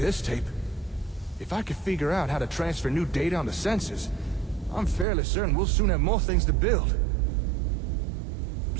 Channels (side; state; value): left; drops out; at 5.1 s